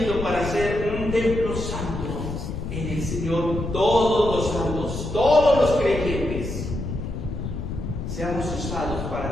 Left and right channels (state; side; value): noise; left; rumble, 5 dB below the sound